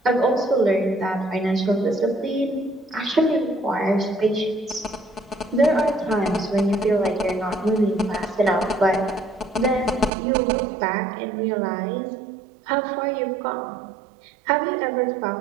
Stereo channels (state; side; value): drops out; left; at 10.1 s